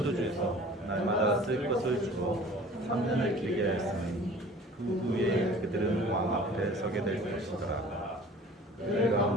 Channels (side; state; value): both; normal; correlation 0.46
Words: 날마다 쓸 것을 주고 3년을 길게 하였으니 그 후에 그들은 왕 앞에 서게 될 것이더라. 그들